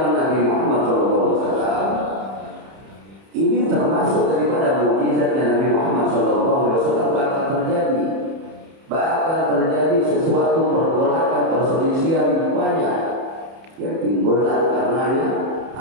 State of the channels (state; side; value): late; left; 30 ms